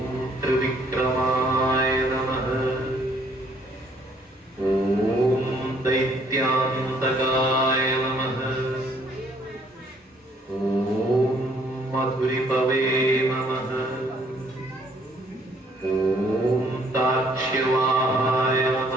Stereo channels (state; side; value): normal; both; correlation 0.64